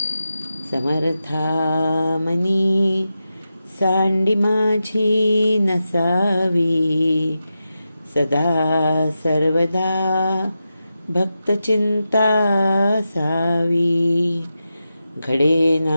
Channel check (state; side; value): inverted; both; correlation -0.90